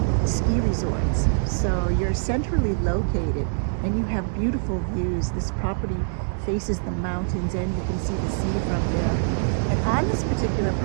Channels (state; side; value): silent; left; 62 dB below the other